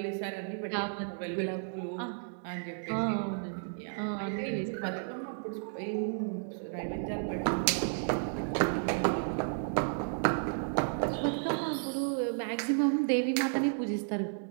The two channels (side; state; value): left; silent; digital silence